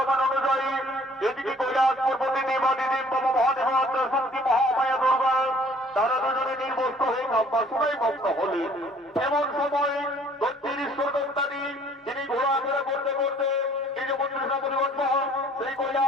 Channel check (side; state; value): both; normal; correlation 0.57